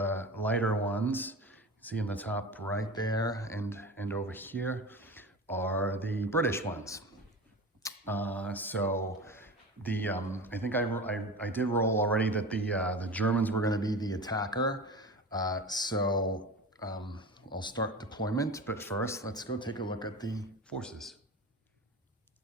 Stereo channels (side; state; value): both; normal; correlation 0.31